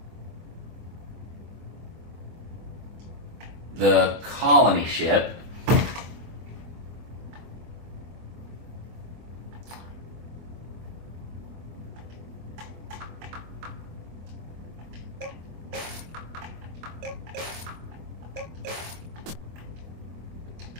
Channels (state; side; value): late; left; 24 ms